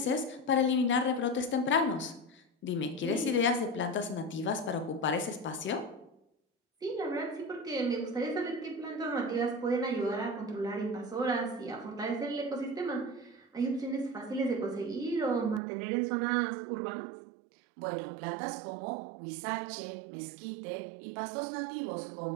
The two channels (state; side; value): drops out; left; at 15.6 s